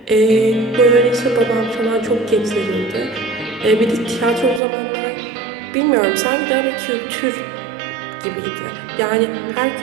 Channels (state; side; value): drops out; left; at 4.6 s